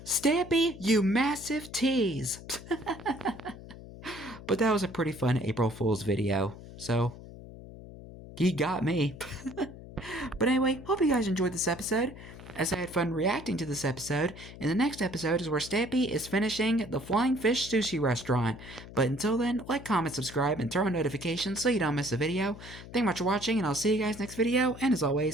Stampy, you massive tease. But that was a pretty fun April Fool's video. So, he got me. But anyway, hope you guys enjoyed this episode, as I had fun reacting to this episode. And the next episode is where Stampy is finishing the Flying Fish Sushi Restaurant. But until then, like, comment, subscribe, and turn on notifications so you don't miss a video. Thank you much for watching, and I'll see you guys next video. And as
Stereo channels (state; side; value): noise; left; hum, 15 dB below the sound